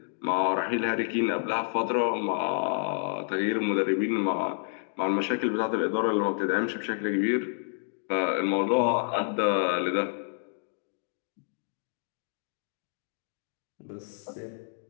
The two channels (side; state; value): right; silent; digital silence